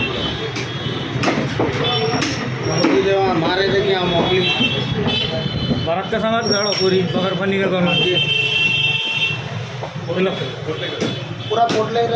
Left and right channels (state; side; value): identical; both; correlation 1.00